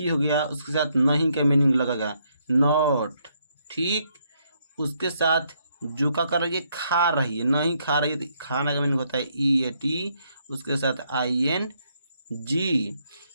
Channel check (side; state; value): both; inverted; correlation -0.74